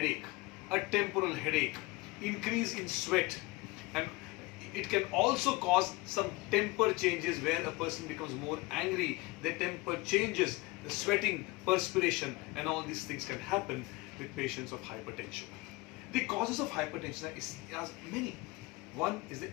a temporal headache, increase in sweat, and it can also cause some temper changes where a person becomes more angry, their temper changes, the sweating, perspiration, and all these things can happen with patients of hypertension. The causes of hypertension are many. One is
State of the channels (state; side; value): quieter; right; 22.6 dB